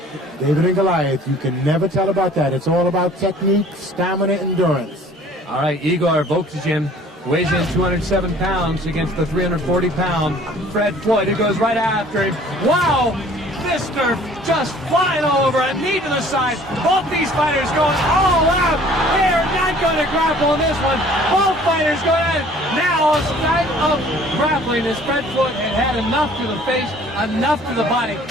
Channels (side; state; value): both; normal; correlation 0.53